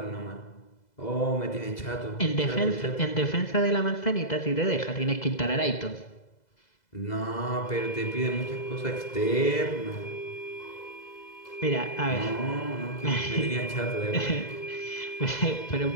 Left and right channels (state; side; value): late; right; 2.0 ms